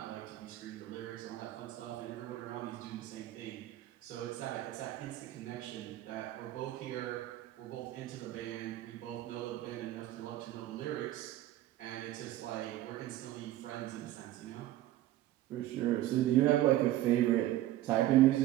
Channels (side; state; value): left; quieter; 14.5 dB